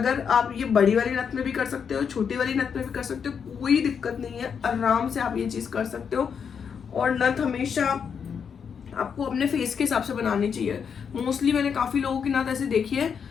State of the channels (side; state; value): right; quieter; 6.8 dB